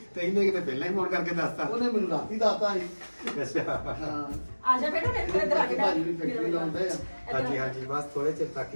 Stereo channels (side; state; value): both; inverted; correlation -1.00